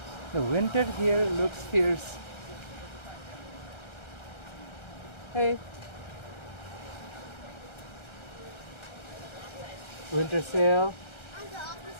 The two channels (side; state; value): right; late; 1.3 ms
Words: The winter here looks fierce. Hey. Winter sale.